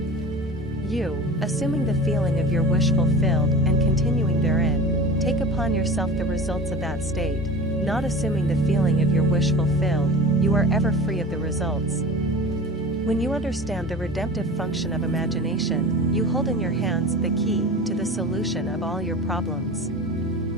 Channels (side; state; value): both; normal; correlation 0.35